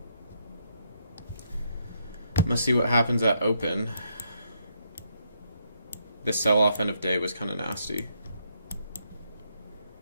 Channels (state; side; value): inverted; both; correlation -0.76